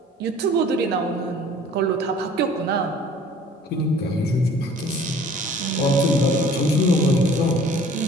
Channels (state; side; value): normal; both; correlation 0.51